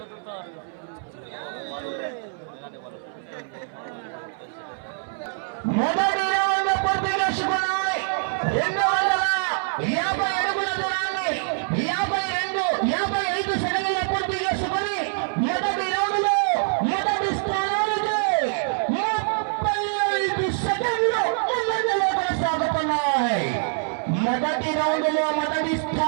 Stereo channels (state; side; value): silent; left; 60 dB below the other